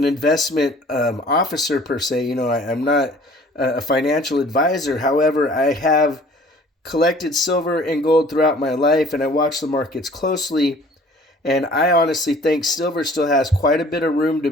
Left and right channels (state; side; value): normal; both; correlation 0.51